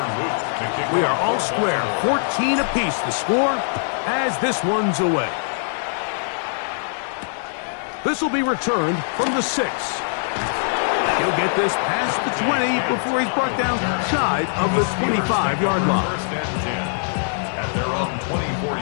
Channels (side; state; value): right; silent; 60 dB below the other